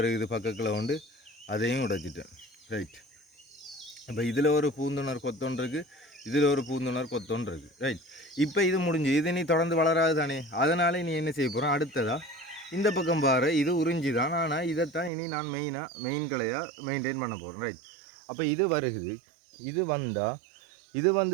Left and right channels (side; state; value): left; drops out; at 15.1 s